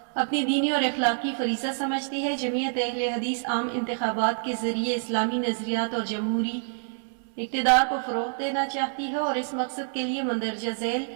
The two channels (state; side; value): silent; left; 60 dB below the other